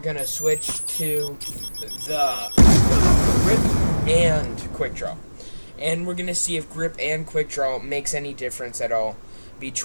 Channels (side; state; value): both; inverted; correlation -1.00